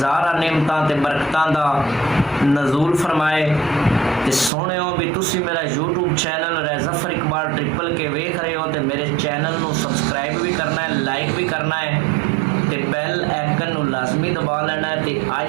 नेमतां ते बरकतां दा नज़ूल फरमाए। ते सोहणिओ भी तुसी मेरा यूट्यूब चैनल रज़फ़र इकबाल ट्रिपल के वेख रहे हो तो मेरे चैनल को सबसक्राइब भी करना है, लाइक भी करना है ते बैल आइकन लाजमी दबा लेना है। ते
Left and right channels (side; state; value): left; drops out; at 4.5 s